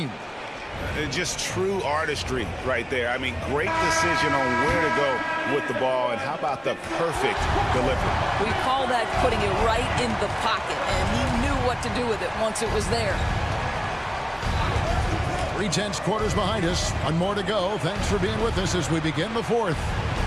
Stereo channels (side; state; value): both; identical; correlation 1.00